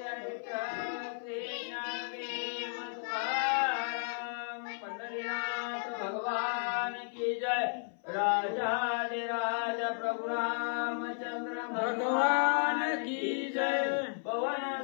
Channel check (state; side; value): silent; right; 55 dB below the other